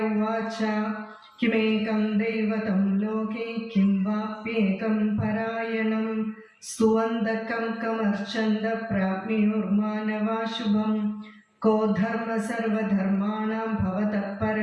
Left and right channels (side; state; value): both; identical; correlation 1.00